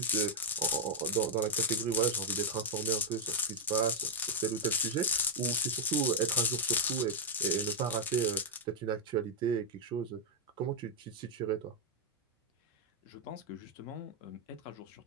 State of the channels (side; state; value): both; normal; correlation 0.01